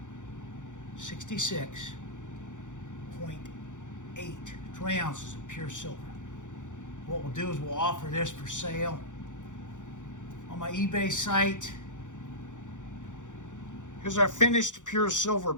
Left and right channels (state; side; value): late; right; 0.86 ms